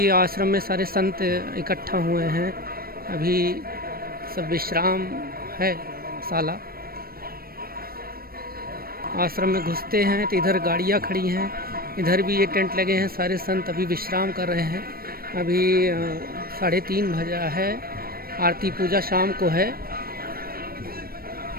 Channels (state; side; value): late; left; 0.44 ms